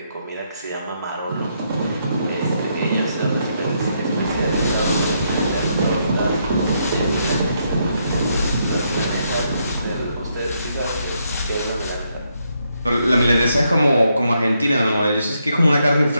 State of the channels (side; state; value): both; inverted; correlation -0.78